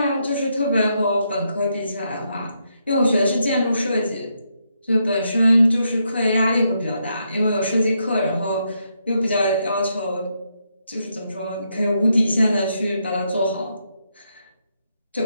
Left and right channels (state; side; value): inverted; both; correlation -0.79